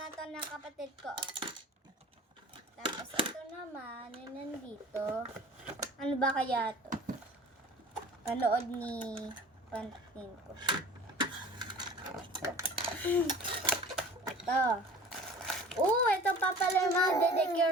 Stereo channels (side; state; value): both; normal; correlation 0.43